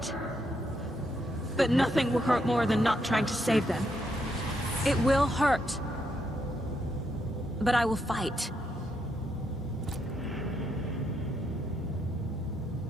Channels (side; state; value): both; normal; correlation 0.78